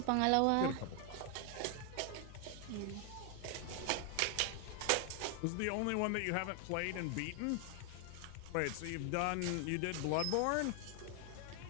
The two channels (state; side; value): different; both; correlation 0.00